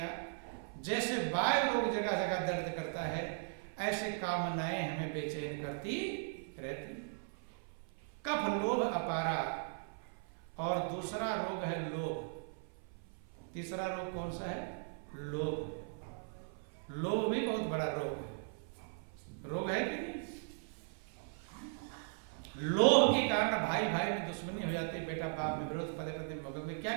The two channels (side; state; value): left; silent; 52 dB below the other